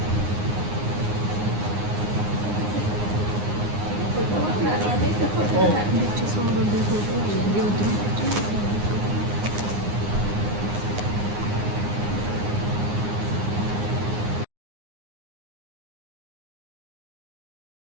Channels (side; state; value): left; late; 9.7 ms